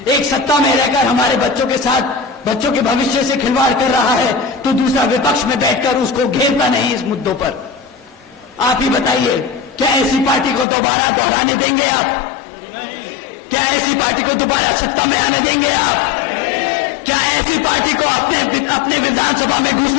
एक सत्ता में रहकर हमारे बच्चों के साथ बच्चों के भविष्य से खिलवाड़ कर रहा है तो दूसरा विपक्ष में बैठकर उसको घेरता नहीं इस मुद्दों पर। आप ही बताइए, क्या ऐसी पार्टी को दोबारा दोहराने देंगे आप? क्या ऐसी पार्टी को दोबारा सत्ता में आने देंगे आप? क्या ऐसी पार्टी को अपने विधानसभा में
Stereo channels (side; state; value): right; drops out; at 10.7 s